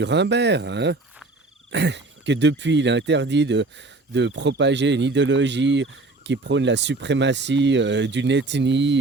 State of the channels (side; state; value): left; quieter; 3.2 dB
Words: hein? Que depuis, il est interdit de propager une idéologie qui prône la suprématie d'une